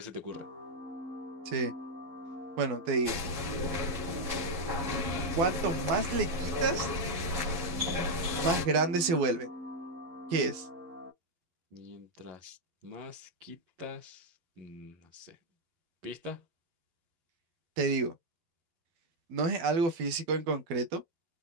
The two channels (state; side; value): late; left; 12 ms